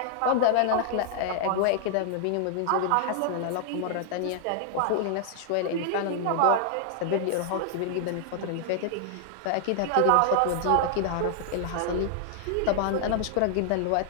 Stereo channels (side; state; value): both; different; correlation 0.00